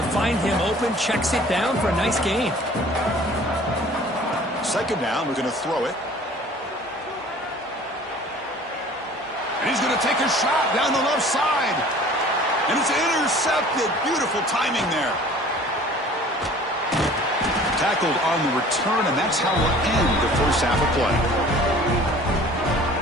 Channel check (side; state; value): both; normal; correlation 0.48